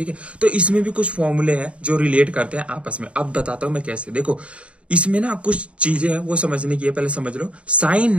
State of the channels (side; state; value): left; late; 0.062 ms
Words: है। तो इसमें भी कुछ फॉर्मूले हैं जो रिलेट करते हैं आपस में। अब बताता हूं मैं कैसे। देखो इसमें ना कुछ चीजें हैं वो समझने की है, पहले समझ लो। साइन